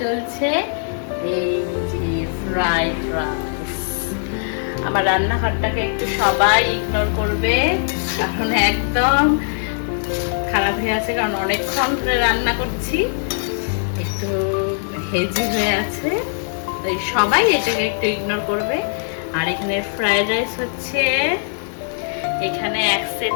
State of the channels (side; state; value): right; silent; digital silence